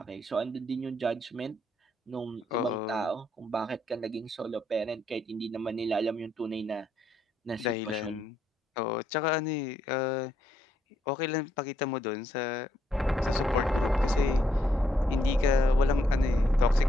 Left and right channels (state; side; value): normal; both; correlation 0.74